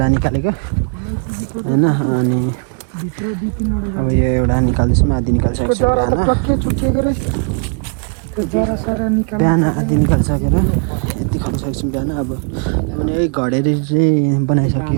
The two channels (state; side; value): quieter; left; 39.3 dB